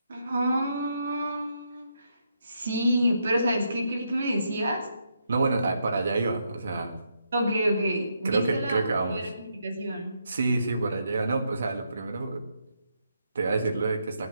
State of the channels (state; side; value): inverted; both; correlation -0.79